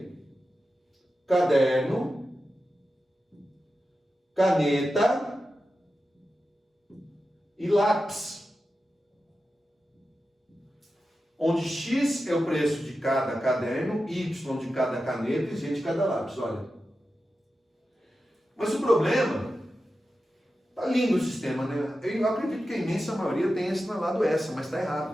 caderno, caneta e lápis. Onde X é o preço de cada caderno, Y de cada caneta e Z de cada lápis. Olha. Mas o problema... Tá lindo o sistema, né? Eu acredito que a imensa maioria tenha assinalado essa, mas está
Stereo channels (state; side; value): normal; both; correlation 0.92